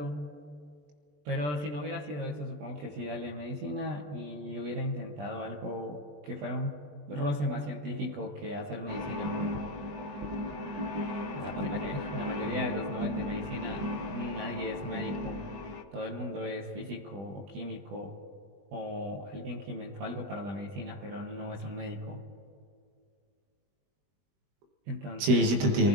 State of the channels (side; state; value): left; late; 20 ms